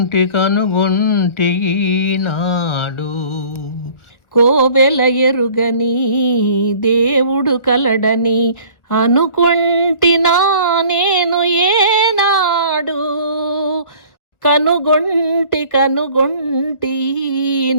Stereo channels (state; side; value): late; right; 1.4 ms